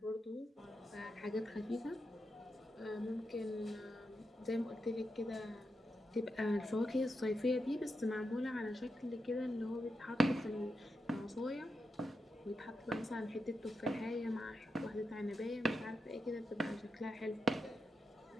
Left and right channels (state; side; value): normal; both; correlation 0.86